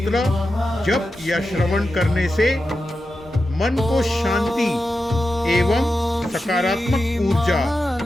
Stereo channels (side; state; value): both; normal; correlation 0.91